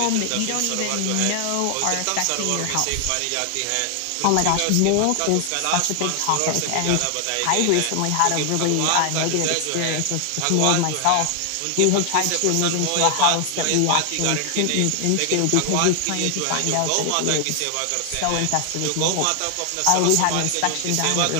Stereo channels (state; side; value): different; both; correlation 0.00